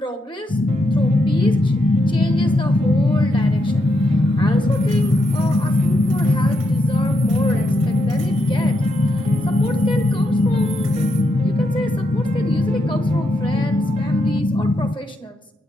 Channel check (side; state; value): both; normal; correlation 0.81